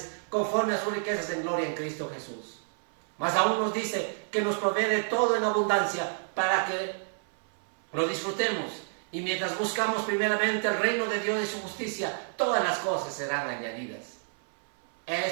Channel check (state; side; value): silent; left; 56 dB below the other